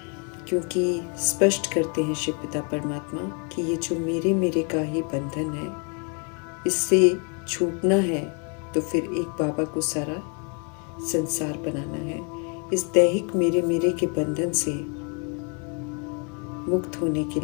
क्योंकि स्पष्ट करते हैं शिव पिता परमात्मा कि ये जो मेरे का ही बंधन है, इससे छूटना है तो फिर एक बाबा को सारा संसार बनाना है। इस दैहिक मेरे के बंधन से मुक्त होने के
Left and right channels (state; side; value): quieter; right; 37.1 dB